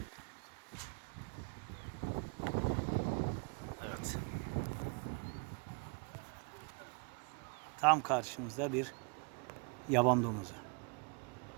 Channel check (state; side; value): quieter; left; 34.0 dB